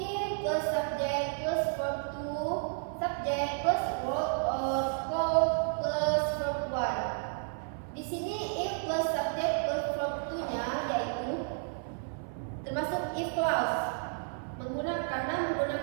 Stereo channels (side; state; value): left; silent; 56 dB below the other